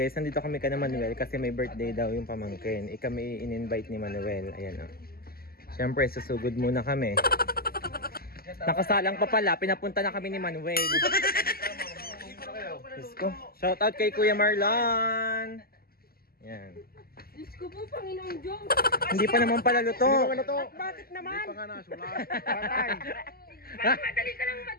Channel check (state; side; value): late; right; 0.44 ms